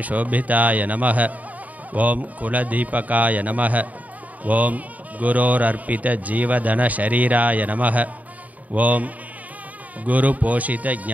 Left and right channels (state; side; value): late; left; 0.073 ms